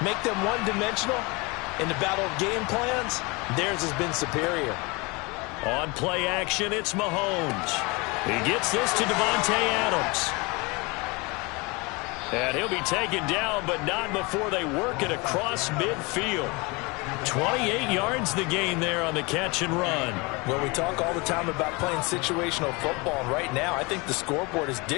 make them one-dimensional. In the battle of game plans, theirs has been superior. On play action, it's Mahomes. He gets this to Devontae Adams. And he'll be taken down, but not before they work it across midfield. 28 yards the gain there on the catch and run. Well, we talk all the time about playing situational football, and right now I think the scoreboard is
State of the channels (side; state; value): right; quieter; 26.8 dB